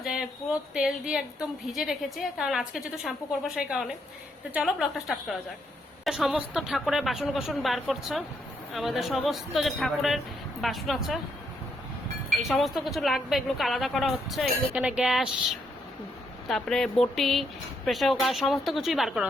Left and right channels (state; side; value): normal; both; correlation 0.76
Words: যে পুরো তেল দিয়ে একদম ভিজে রেখেছি, কারণ আজকে যেহেতু শ্যাম্পু করবো সেই কারণে। তো চলো ব্লগটা স্টার্ট করা যাক। সমস্ত ঠাকুরের বাসন কোসন বার করছে, আমাদের সমস্ত যে ঠাকুরের বাসন আছে এই সমস্ত কিছু লাগবে, এগুলোকে আলাদা করা হচ্ছে। এগুলো এখানে গ্যাস, তারপরে বটি, প্রেসার কুকার সমস্ত কিছুই বার করা